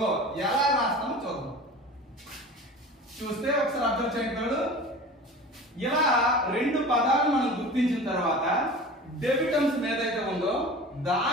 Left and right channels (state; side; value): normal; both; correlation 0.37